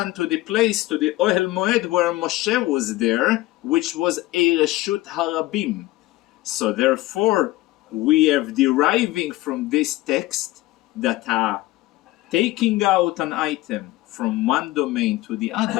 to the place, to the Ohel Moed where Moshe was there, which was a Reshut HaRabim. So therefore, we are deriving from this text that taking out an item from one domain to the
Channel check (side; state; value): right; quieter; 17.8 dB